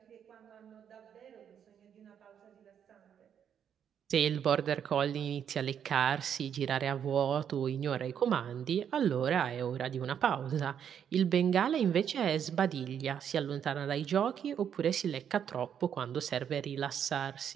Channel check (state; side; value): quieter; left; 8.5 dB